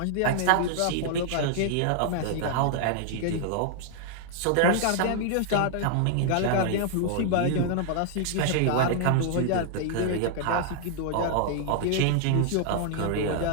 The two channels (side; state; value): both; different; correlation -0.01